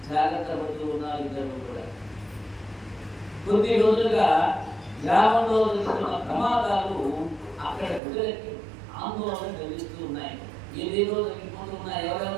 జాగ్రత్త పడుతూ ఉన్నారు ఇద్దరు కూడా. కొద్ది రోజులుగా గ్రామంలో జరుగుతున్న ప్రమాదాలు అక్కడ ప్రజలకి ఆందోళన కలిగిస్తూ ఉన్నాయి. ఏదేదో తగ్గిపోతూ ఉన్నాయి,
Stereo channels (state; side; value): drops out; left; at 8.0 s